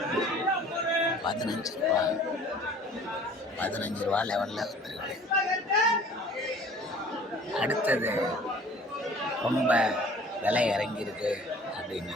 15 ரூபா லெவலில் வந்துருக்கு. அடுத்தது ரொம்ப விலை இறங்கியிருக்கு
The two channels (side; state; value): both; normal; correlation 0.49